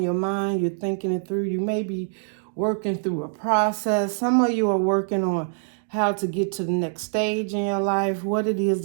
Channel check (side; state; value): left; silent; digital silence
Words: your mind. You're thinking it through. You may be working through a process. Some of you are working on how to get to the next stage in your life, what it is